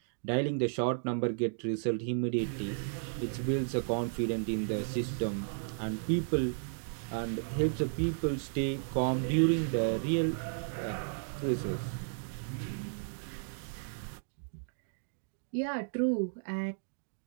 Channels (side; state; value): left; silent; digital silence